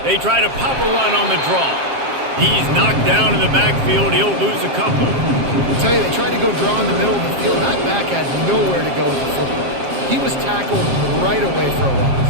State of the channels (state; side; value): late; left; 7.5 ms